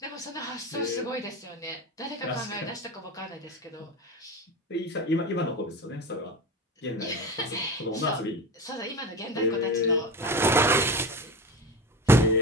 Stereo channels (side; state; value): both; normal; correlation 0.27